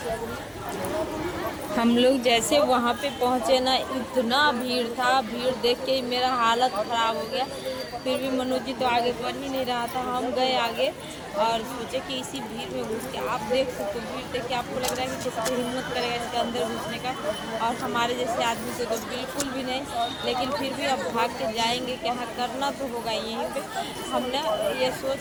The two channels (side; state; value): both; identical; correlation 1.00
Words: हम लोग जैसे वहाँ पे पहुँचे ना, इतना भीड़ था, भीड़ देख के मेरा हालत खराब हो गया। फिर भी मनोज जी तो आगे बढ़ ही नहीं रहा था, हम गए आगे और सोचे कि इसी भीड़ में घुस के, आप देख सकते हो भीड़ देख के आपको लग रहा है कि किसी को हिम्मत करेगा इसके अंदर घुसने का, और हमारे जैसे आदमी से तो बिल्कुल भी नहीं। लेकिन फिर भी अब भाग के जाएंगे, क्या करना तो होगा यहीं पे। हमने ये